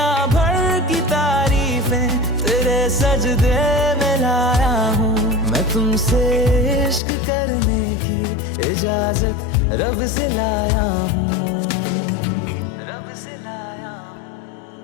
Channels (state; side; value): drops out; right; at 7.0 s